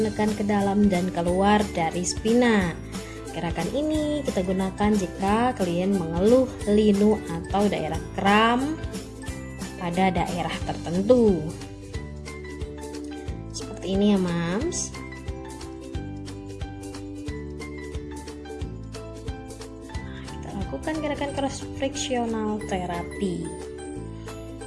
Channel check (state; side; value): identical; both; correlation 1.00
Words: ke dalam dan keluar dari spina. Gerakan ini kita gunakan jika klien mengeluh linu atau daerah kram pada daerah tertentu. Seperti ini ya, Mams. Kita lakukan gerakan cross frictional therapy.